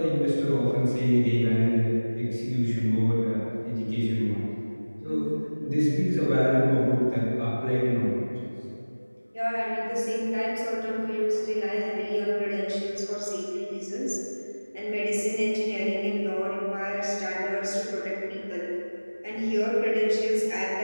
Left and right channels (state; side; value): inverted; both; correlation -1.00